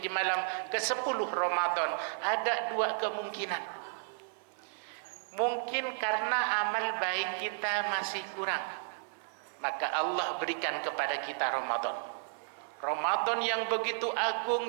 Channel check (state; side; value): silent; left; 56 dB below the other